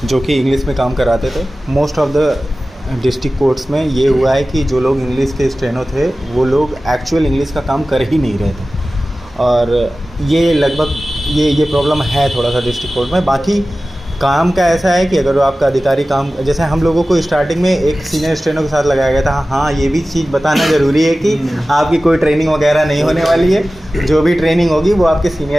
जो कि इंग्लिश में काम कराते थे। Most of the district courts में ये हुआ है कि जो लोग इंग्लिश के स्टेनो थे वो लोग एक्चुअल इंग्लिश का काम कर ही नहीं रहे थे, और ये लगभग ये प्रॉब्लम है थोड़ा सा डिस्ट्रिक्ट कोर्ट में। बाकी काम का ऐसा है कि अगर आपका अधिकारी काम, जैसे हम लोगों को स्टार्टिंग में एक सीनियर स्टेनो के साथ लगाया गया था। हाँ, ये भी चीज़ बताना ज़रूरी है कि आपकी कोई ट्रेनिंग वगैरह नहीं होने वाली है। जो भी ट्रेनिंग होगी वो आपके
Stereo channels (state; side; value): normal; both; correlation 0.96